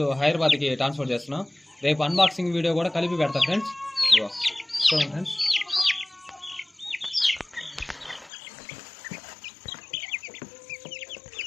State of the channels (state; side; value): drops out; right; at 8.3 s